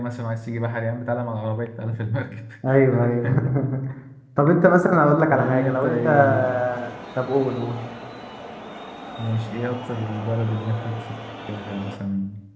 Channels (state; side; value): identical; both; correlation 1.00